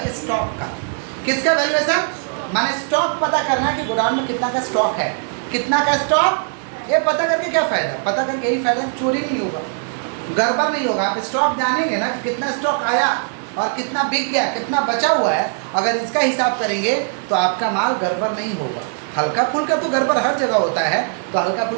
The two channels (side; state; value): left; silent; 62 dB below the other